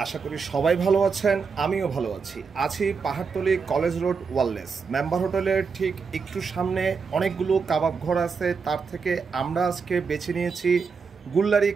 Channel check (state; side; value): quieter; left; 5.3 dB